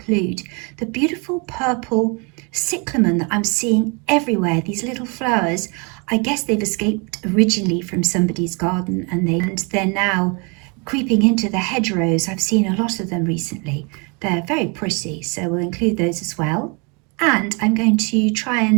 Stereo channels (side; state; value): left; quieter; 32.3 dB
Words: the beautiful purple cyclamen that I'm seeing everywhere. These little flowers I guess they've escaped originally from somebody's garden and they're now creeping into the hedgerows. I've seen a lot of them recently. They're very pretty, so we'll include those as well. And I'm going to try